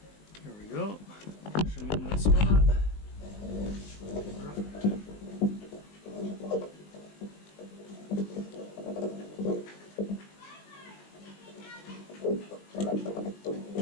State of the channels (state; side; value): late; right; 20 ms